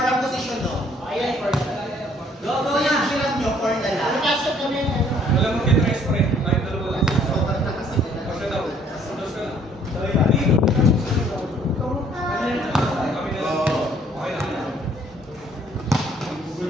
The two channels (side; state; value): both; normal; correlation 0.61